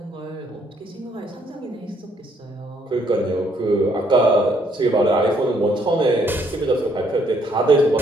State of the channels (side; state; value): both; normal; correlation 0.69